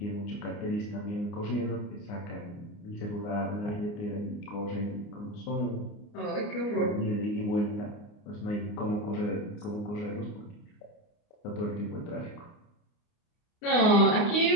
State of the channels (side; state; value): right; late; 29 ms